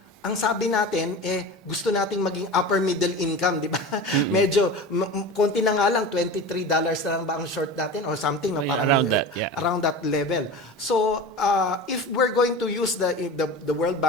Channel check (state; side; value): normal; both; correlation 0.32